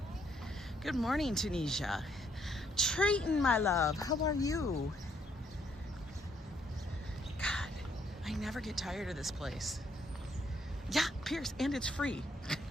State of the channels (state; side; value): normal; both; correlation 0.71